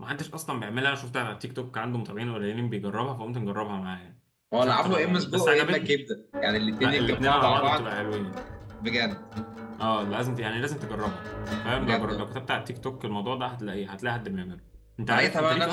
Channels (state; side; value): identical; both; correlation 1.00